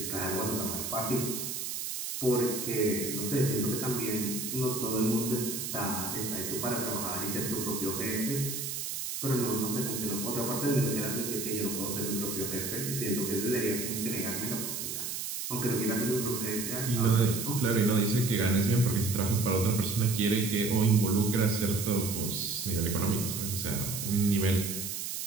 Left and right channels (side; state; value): right; noise; hiss, 4 dB below the sound